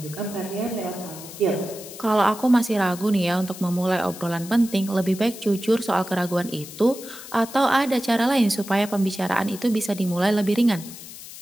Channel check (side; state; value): left; noise; hiss, 14 dB below the sound